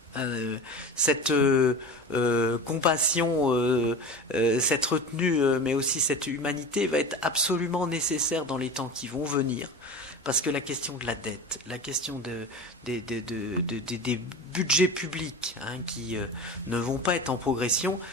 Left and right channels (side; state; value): both; normal; correlation 0.30